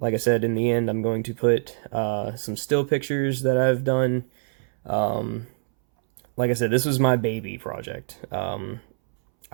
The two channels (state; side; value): silent; left; 62 dB below the other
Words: I said, in the end, I'm going to put some still pictures that I've done. Like I said, this was my baby project.